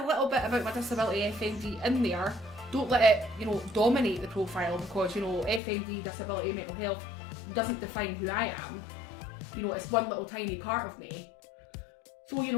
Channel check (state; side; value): drops out; right; at 5.6 s